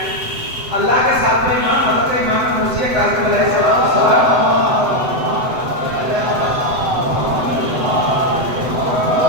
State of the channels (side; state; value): left; late; 7.9 ms